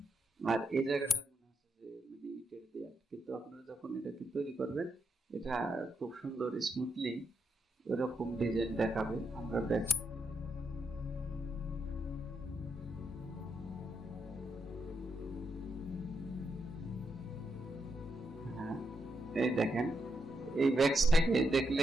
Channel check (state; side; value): normal; both; correlation 0.82